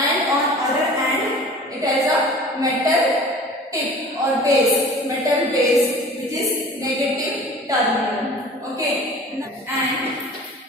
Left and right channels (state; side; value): normal; both; correlation 0.43